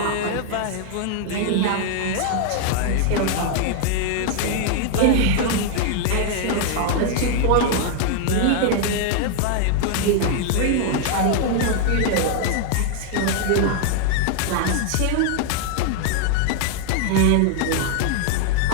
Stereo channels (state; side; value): different; both; correlation 0.00